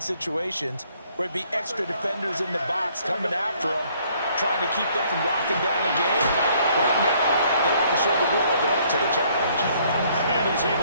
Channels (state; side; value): inverted; both; correlation -0.64